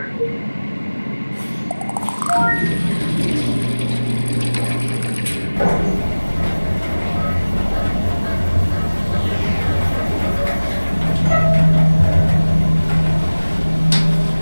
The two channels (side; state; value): both; inverted; correlation -1.00